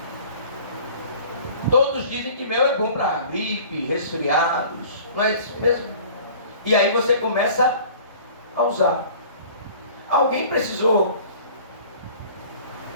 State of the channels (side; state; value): both; inverted; correlation -0.47